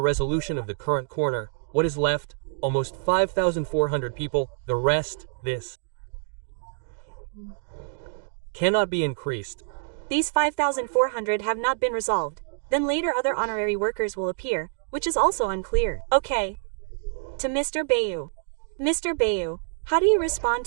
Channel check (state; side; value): silent; left; digital silence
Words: resolution of the current corner, what is left almost 5,400 people, the rest, this cannot be increased. These 5,400 have not been resolved. Then later other honorary workers will appear, which is also unclear. Okay. To Mr. Bayu. Mr. Bayu, how do you respond